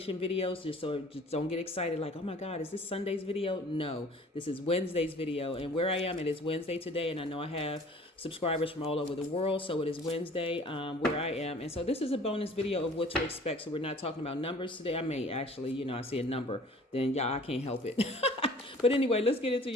videos. Just don't get excited like, oh my God, is this Sunday's video? No, this is Wednesday's video. And where I am, it is Wednesday today. And I know I have subscribers from all over the world. So it is Wednesday where I am. And so this is a bonus video of what to expect. So we're not talking about numbers today. I may actually, I see a number, then y'all, I can't help it. But anyway, let's get into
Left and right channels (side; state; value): both; normal; correlation 0.49